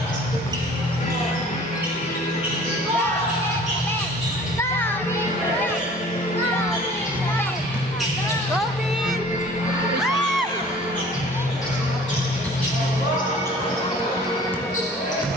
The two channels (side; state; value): both; normal; correlation 0.48